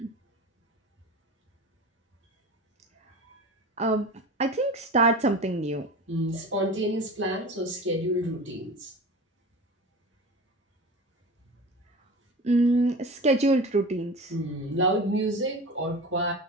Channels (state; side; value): normal; both; correlation 0.33